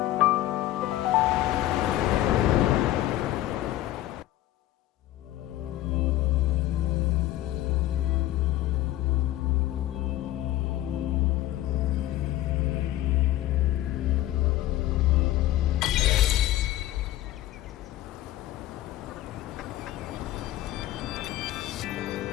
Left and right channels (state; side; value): quieter; right; 14.7 dB